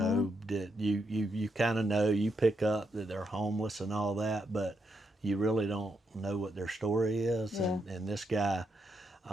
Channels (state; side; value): normal; both; correlation 0.80